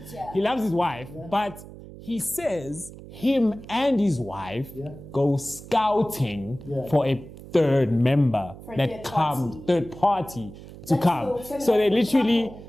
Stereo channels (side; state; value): right; noise; hum, 16 dB below the sound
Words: He loves his wife, but he says him and his wife go scouting for a third member third party to come. So they literally,